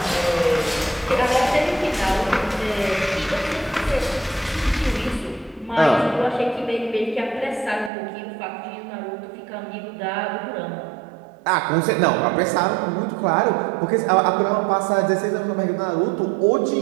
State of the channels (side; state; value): left; drops out; at 7.9 s